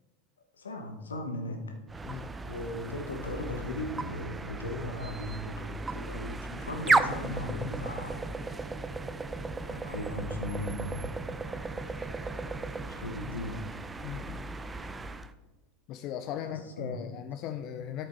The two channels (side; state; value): both; normal; correlation 0.53